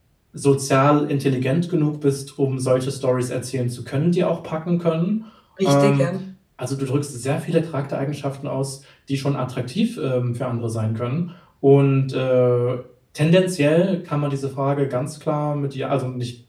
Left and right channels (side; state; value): both; identical; correlation 1.00